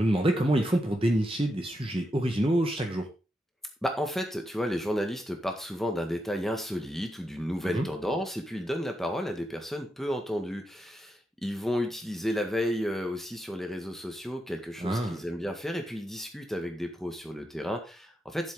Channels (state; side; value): normal; both; correlation 0.84